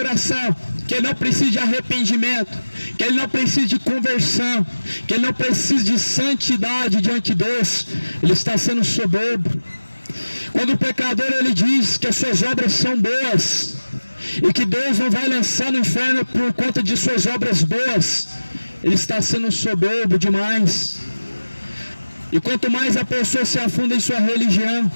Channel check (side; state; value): both; inverted; correlation -1.00